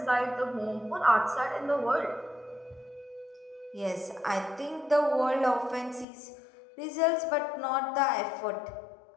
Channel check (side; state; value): right; drops out; at 6.1 s